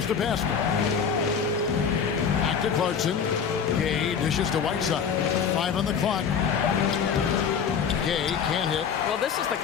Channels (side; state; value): right; quieter; 6.9 dB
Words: to Pascal. Back to Clarkson. Gay dishes to Whiteside. 5 on the clock. Gay can't hit. Well, this is the